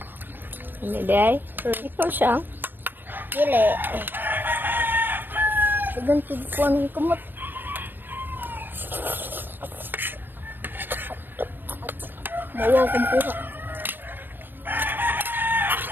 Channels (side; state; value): left; late; 0.094 ms